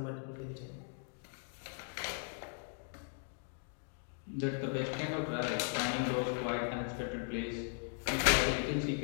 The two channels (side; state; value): right; silent; 52 dB below the other